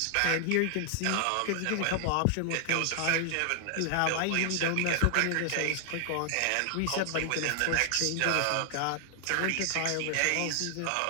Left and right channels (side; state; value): both; different; correlation 0.00